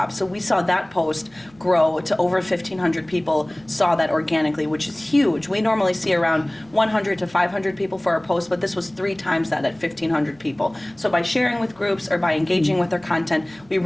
So we saw that post grow to over 1,500 people saw that organically, which is huge. We normally see around 100 to 500 people for our post, but this was 3 times that at 1,500 people. So by sharing with groups or by engaging with our content, we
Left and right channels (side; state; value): right; noise; hum, 29 dB below the sound